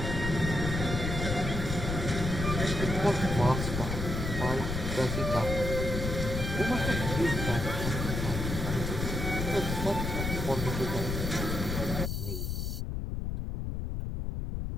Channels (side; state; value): left; noise; rumble, 3 dB below the sound